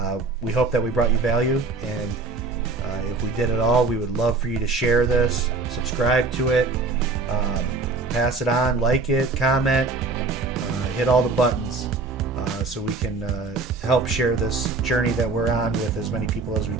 We hope that we brought you value, and if we did at all, we would love for you to share this, subscribe to it, pass it on, like it, comment, hit all the buttons so we can help share this journey that we're on with as many people as we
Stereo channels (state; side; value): quieter; left; 3.9 dB